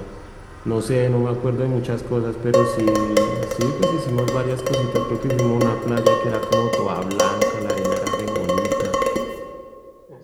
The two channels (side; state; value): both; identical; correlation 1.00